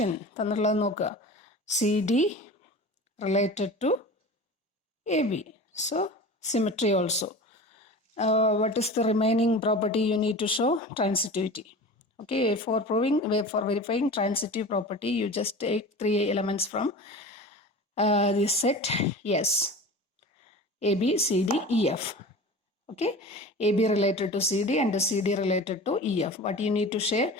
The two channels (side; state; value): both; normal; correlation 0.35